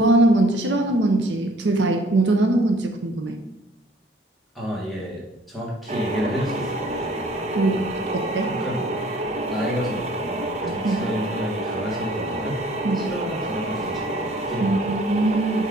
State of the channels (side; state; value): both; normal; correlation 0.56